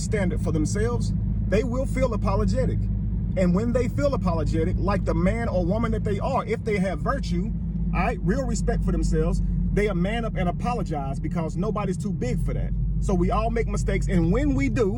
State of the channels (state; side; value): identical; both; correlation 1.00